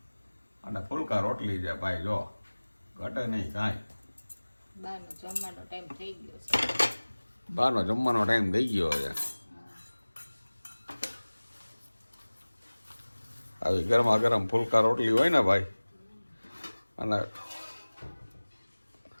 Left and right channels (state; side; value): inverted; both; correlation -1.00